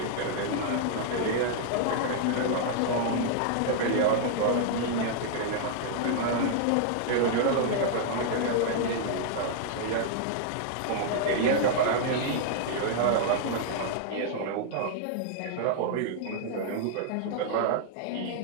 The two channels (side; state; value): both; different; correlation -0.01